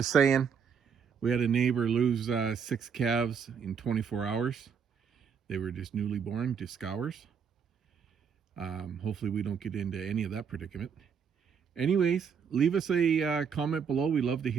saying, we had a neighbor lose 6 calves in 24 hours. They were just newly born, just scours. Hopefully we don't get into any of that predicament. Anyways, leave us a comment below. We love to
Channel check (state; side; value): quieter; left; 6.7 dB